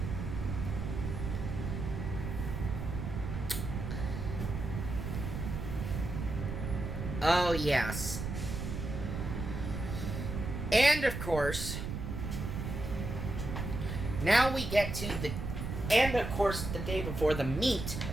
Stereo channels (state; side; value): noise; right; rumble, 4 dB below the sound